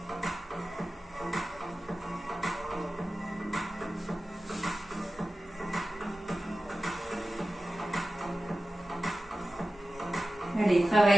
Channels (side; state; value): both; normal; correlation 0.95